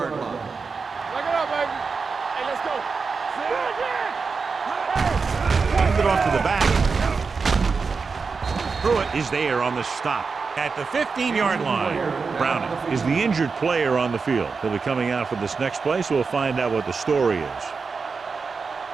line. Look it up, baby. Hey, let's go. Hand it off to the back. Pruitt is there on the stop at the 15-yard line. Browning is the injured player on the field. He'll be coming out for this next play, so we'll find out what the story is.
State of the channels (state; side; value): quieter; left; 4.9 dB